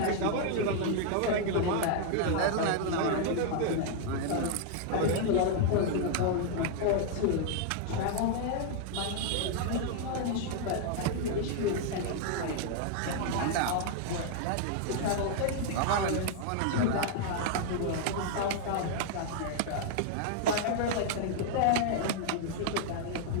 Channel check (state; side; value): different; both; correlation 0.00